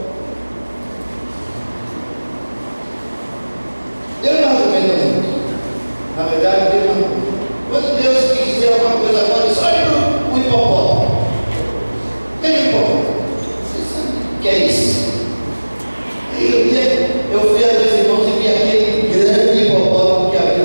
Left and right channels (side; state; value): both; inverted; correlation -1.00